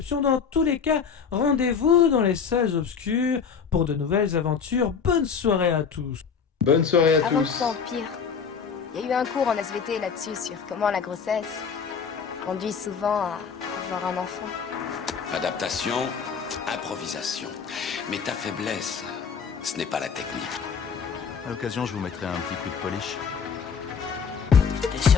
Dans tous les cas, rendez-vous dans les salles obscures pour de nouvelles aventures. Bonne soirée à tous. Bonne soirée à tous. Avant que ça empire, il y a eu un cours en SVT là-dessus sur comment la grossesse conduit souvent à avoir un enfant. Adaptation, improvisation. Mais ta faiblesse, ce n'est pas la technique. À l'occasion, je vous mettrai un petit coup de polish. T'es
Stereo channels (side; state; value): right; quieter; 6.3 dB